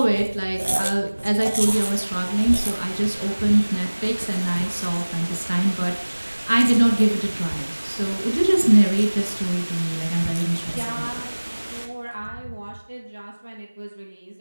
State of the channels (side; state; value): both; inverted; correlation -1.00